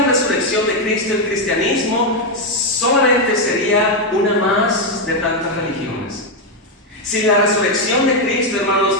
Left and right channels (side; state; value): both; normal; correlation 0.04